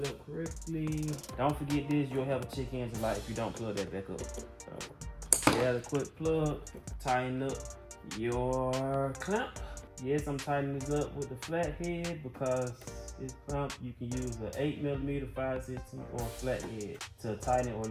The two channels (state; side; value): identical; both; correlation 1.00